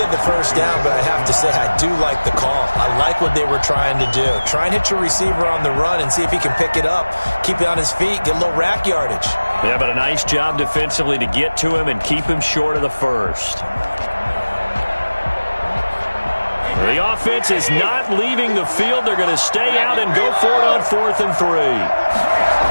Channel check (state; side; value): inverted; both; correlation -1.00